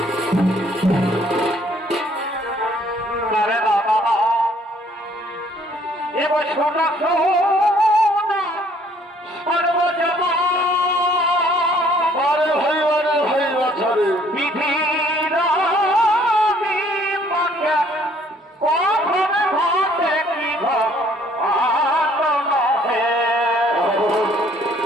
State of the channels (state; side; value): normal; both; correlation 0.61